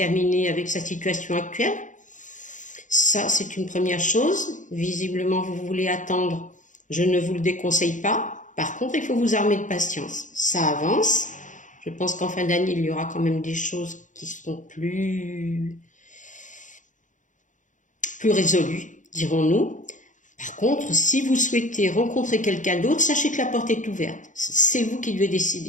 avec sa situation actuelle. Ça, c'est une première chose. Visiblement, vous voulez attendre. Je ne vous le déconseille pas. Par contre, il faut vous armer de patience. Ça avance. Je pense qu'en fin d'année, il y aura quand même des choses qui seront plus résolues, dirons-nous. Par contre, si vous souhaitez rencontrer quelqu'un d'autre, sachez que la porte est ouverte. C'est vous qui devez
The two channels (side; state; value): right; late; 0.37 ms